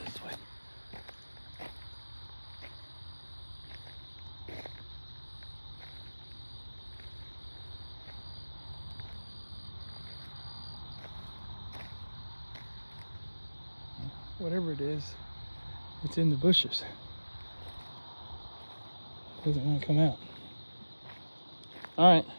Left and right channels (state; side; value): inverted; both; correlation -1.00